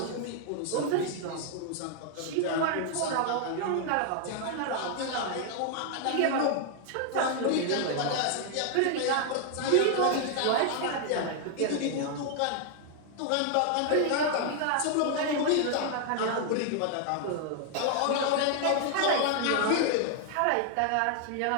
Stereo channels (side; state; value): both; different; correlation 0.00